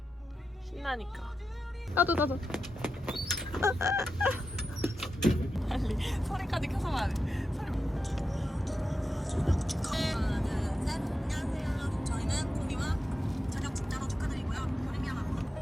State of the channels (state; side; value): normal; both; correlation 0.89